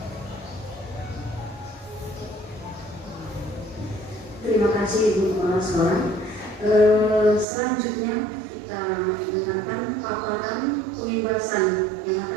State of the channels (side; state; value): left; drops out; at 7.5 s